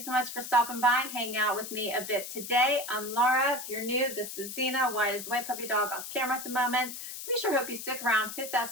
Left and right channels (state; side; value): noise; left; hiss, 9 dB below the sound